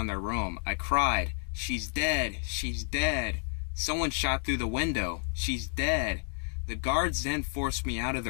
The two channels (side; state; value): right; silent; 57 dB below the other